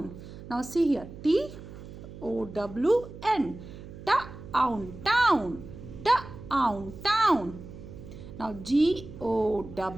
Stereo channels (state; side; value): noise; right; hum, 14 dB below the sound